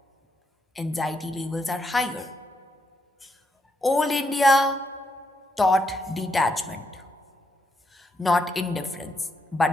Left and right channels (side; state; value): both; normal; correlation 0.78